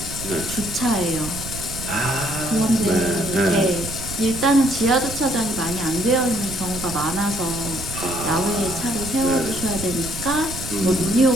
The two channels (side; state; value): right; noise; rumble, 10 dB below the sound